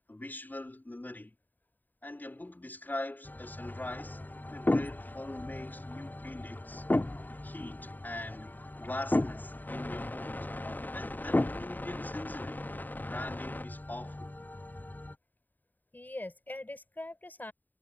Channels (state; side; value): late; right; 0.088 ms